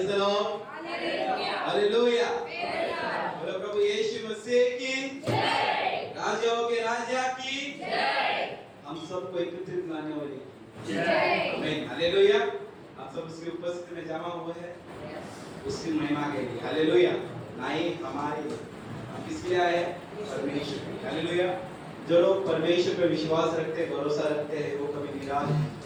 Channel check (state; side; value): identical; both; correlation 1.00